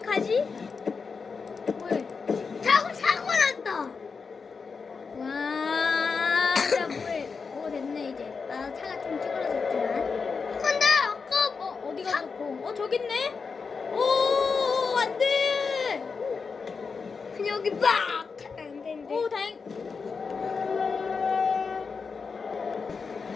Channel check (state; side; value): quieter; right; 5.1 dB